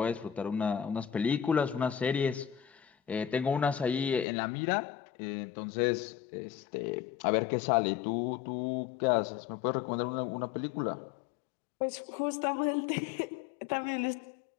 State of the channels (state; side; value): drops out; right; at 4.2 s